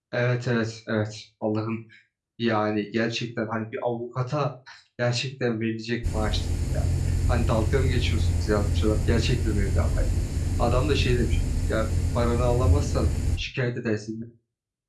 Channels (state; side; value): identical; both; correlation 1.00